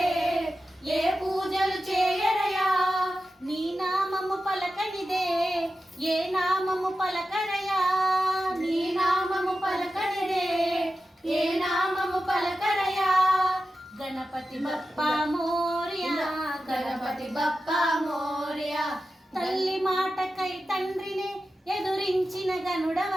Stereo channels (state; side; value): normal; both; correlation 0.92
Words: ఏ పూజలు చేయరయా. నీ నామము పలకనిదే ఏ నామము పలకరయా, నీ నామము పలకనిదే ఏ నామము పలకరయా. గణపతి బప్పా మోరియా, గణపతి బప్పా మోరియా. తల్లి మాటకై తండ్రిని ఎదురించిన